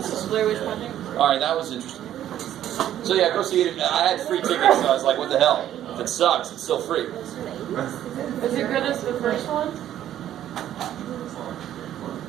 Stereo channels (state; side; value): quieter; left; 11.6 dB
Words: Blair Witch Project? alright, that was interesting. So yeah, go see it. I had free tickets, so I was like, what the hell? If it sucks, it's still free. Is it good as the first one?